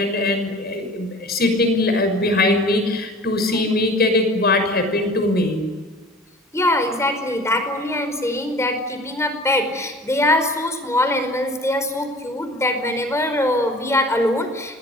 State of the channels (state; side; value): normal; both; correlation 0.44